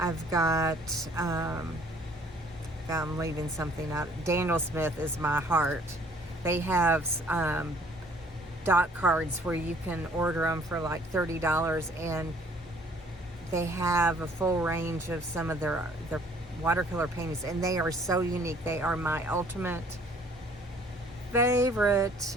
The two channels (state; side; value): normal; both; correlation 0.58